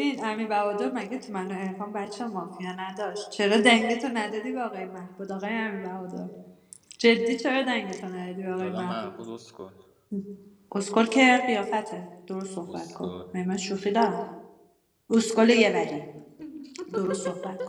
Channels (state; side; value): identical; both; correlation 1.00